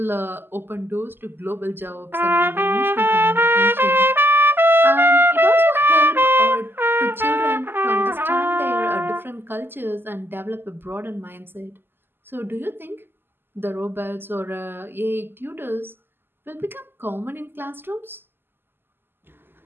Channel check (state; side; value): late; left; 0.10 ms